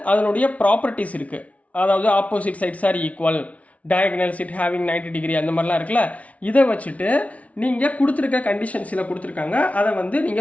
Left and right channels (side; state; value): right; late; 0.066 ms